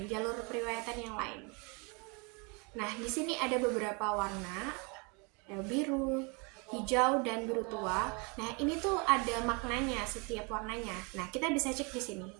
jalur periwayatan yang lain. Nah, di sini ada beberapa warna, ada biru, hijau, dan biru tua. Nah, ini tuh ada maknanya setiap warnanya. Nah, kita bisa cek di sini.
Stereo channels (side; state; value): left; quieter; 31.5 dB